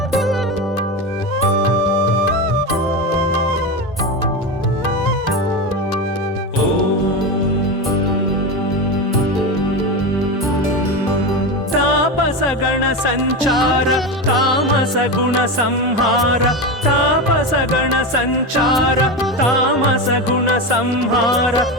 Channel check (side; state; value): both; normal; correlation 0.19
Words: गण संचार तामस गुण संहार तापस गण संचार तामस गुण संहार